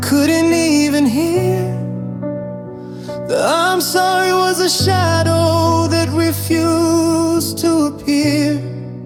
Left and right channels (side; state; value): both; identical; correlation 1.00